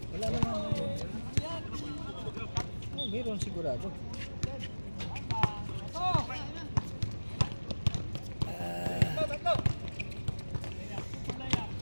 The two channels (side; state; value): both; inverted; correlation -1.00